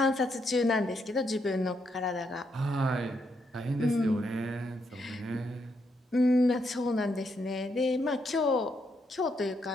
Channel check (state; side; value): normal; both; correlation 0.78